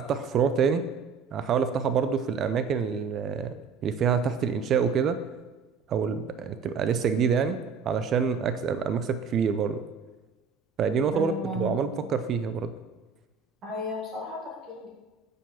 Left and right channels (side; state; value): left; quieter; 5.7 dB